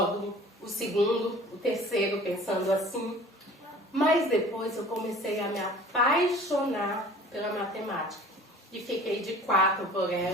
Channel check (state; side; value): normal; both; correlation 0.46